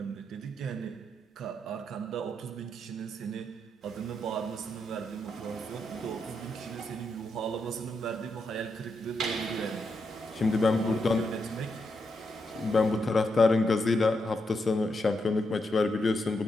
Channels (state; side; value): normal; both; correlation 0.82